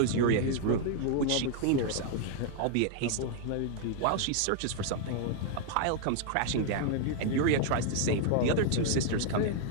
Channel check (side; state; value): both; different; correlation 0.00